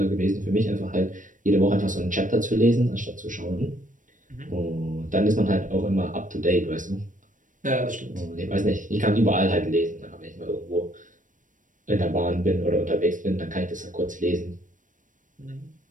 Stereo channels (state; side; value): late; left; 0.38 ms